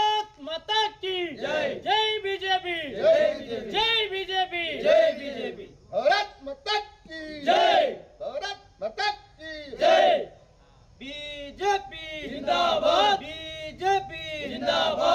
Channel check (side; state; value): both; identical; correlation 1.00